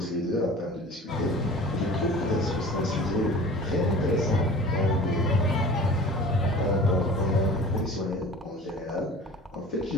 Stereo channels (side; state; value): both; normal; correlation 0.42